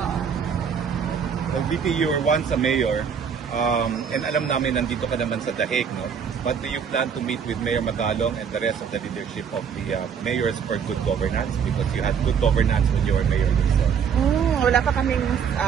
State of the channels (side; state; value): left; quieter; 7.1 dB